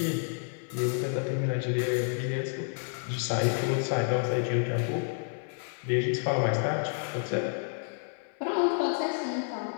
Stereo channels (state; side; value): silent; right; 58 dB below the other